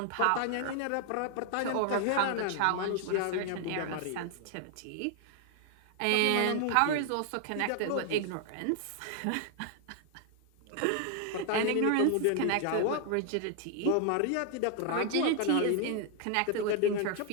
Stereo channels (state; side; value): different; both; correlation 0.00